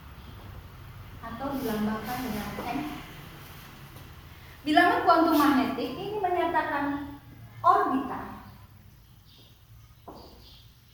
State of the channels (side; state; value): both; identical; correlation 1.00